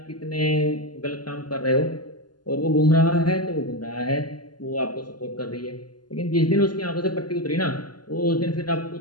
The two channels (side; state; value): right; late; 0.71 ms